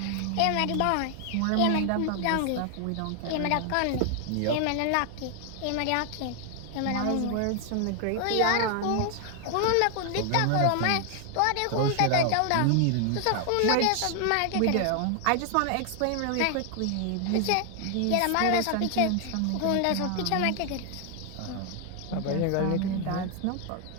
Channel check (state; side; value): different; both; correlation 0.00